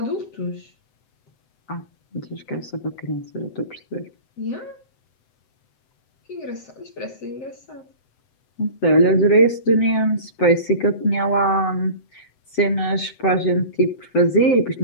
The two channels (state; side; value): late; right; 7.9 ms